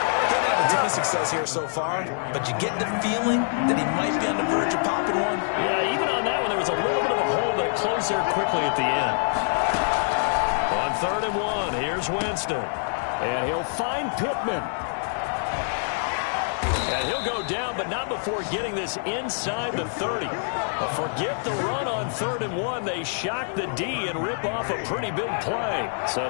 Didn't have a ton of success here so far, but you get the feeling that he might be on the verge of popping one. Yeah, even on that one, there was a little bit of a hole, but it closed there quickly at the end. On 3rd and 1, here's Winston. And he'll find Pittman. And he'll go down, but not before getting this inside the 30. But forget the run on 3rd and 1. They shock the D and rip off a pretty big play. So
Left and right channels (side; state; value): right; silent; 61 dB below the other